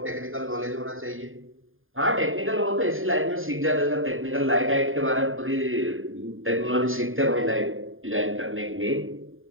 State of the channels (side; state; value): left; late; 0.59 ms